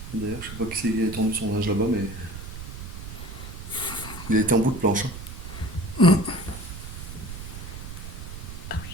D'ailleurs, je sais pas qui c'est qui a étendu son linge là-bas, mais il a été en bout de planche.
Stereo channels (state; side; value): noise; right; rumble, 10 dB below the sound